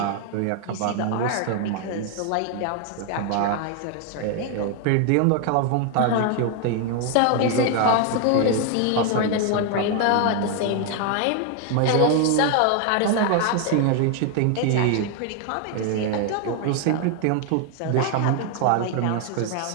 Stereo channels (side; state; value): both; different; correlation 0.00